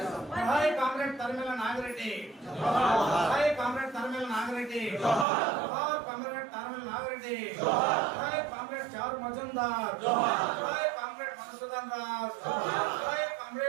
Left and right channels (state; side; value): drops out; left; at 5.2 s